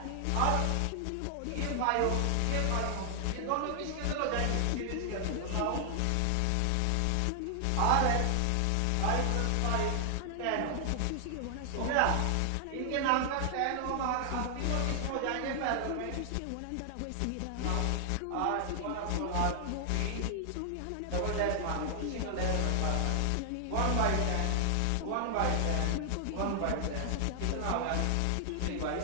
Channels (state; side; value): different; both; correlation 0.00